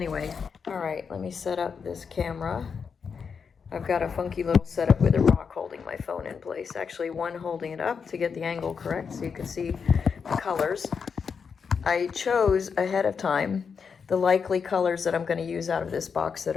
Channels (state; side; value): quieter; right; 6.1 dB